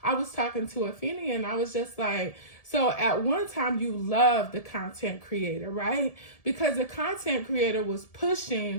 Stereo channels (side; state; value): right; late; 1.7 ms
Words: I was talking to Afeni and I was just like, so at one time you loved the content creator, right? Because the content creator was